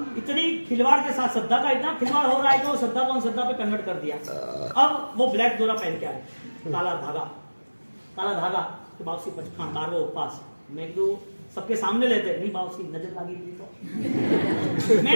इतनी खिलवाड़ के साथ, श्रद्धा का इतना खिलवाड़ हो रहा है कि वो श्रद्धा को अंधश्रद्धा पे कन्वर्ट कर दिया। अब वो ब्लैक डोरा पहन के आए, काला धागा कि बाबूसी 12वां उपवास। मैं तो सबके सामने लेते नहीं, बाबूसी नजर लगी तो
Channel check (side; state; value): both; inverted; correlation -1.00